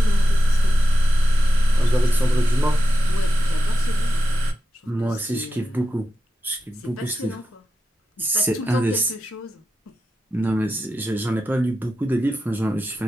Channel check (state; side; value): normal; both; correlation 0.91